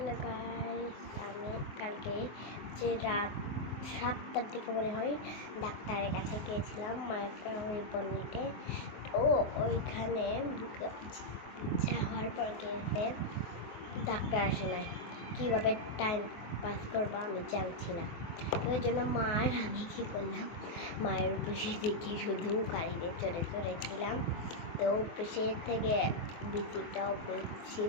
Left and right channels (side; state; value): right; late; 24 ms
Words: guys, আমি কালকে যে রাত 7টার দিকে মনে হয় ডাক্তারের কাছে গিয়েছিলাম মাকে রিপোর্ট নিতে। তো ওইখানে যাওয়ার পর গিয়েছে ডাক্তার আসে নাই। কীভাবে টাইম পাস করবো আমি জানছি না। তো ওই জন্য আমি কী করলাম, মায়ের অফিসে দেখি শুধু গাড়িতে চড়ে চড়েছিলাম। তো অফিসের থেকে বিচিটা অফিস